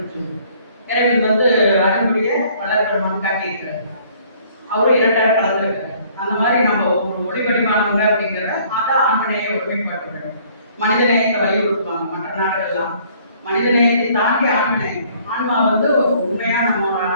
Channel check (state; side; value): inverted; both; correlation -0.59